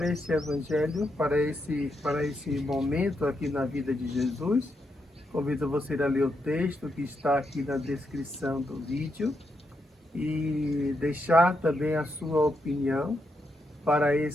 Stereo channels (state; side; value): normal; both; correlation 0.82